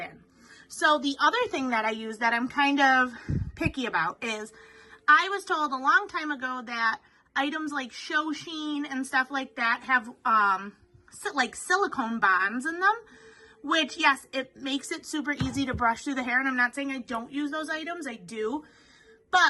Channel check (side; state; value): both; identical; correlation 1.00